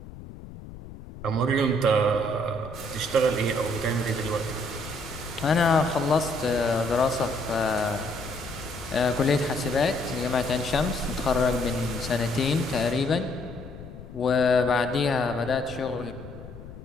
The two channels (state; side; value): noise; left; rumble, 14 dB below the sound